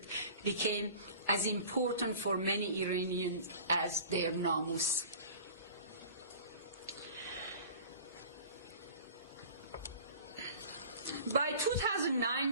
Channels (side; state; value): both; inverted; correlation -0.42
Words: became as important for many Iranians as their namus. By